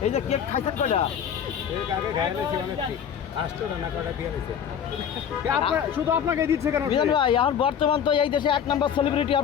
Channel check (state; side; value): quieter; right; 8.3 dB